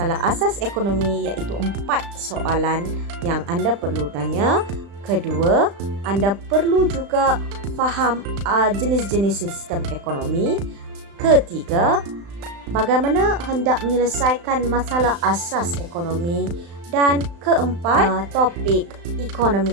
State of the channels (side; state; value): left; late; 35 ms